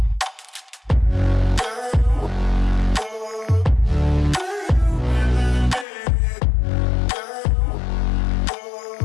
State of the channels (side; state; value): right; drops out; at 5.9 s